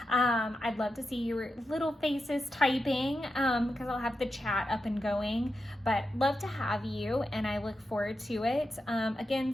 I'd love to see your little faces typing, because I'll have the chat up and going. But love to have you, and I look forward to it.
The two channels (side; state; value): both; normal; correlation 0.89